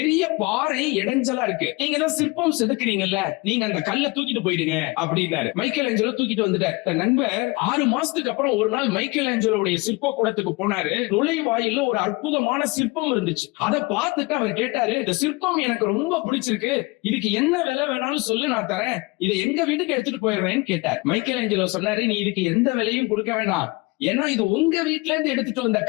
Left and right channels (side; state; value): right; quieter; 25.3 dB